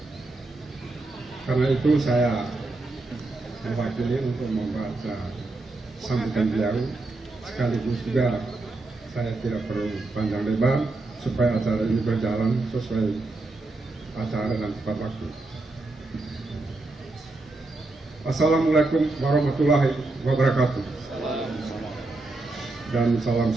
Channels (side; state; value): left; quieter; 3.1 dB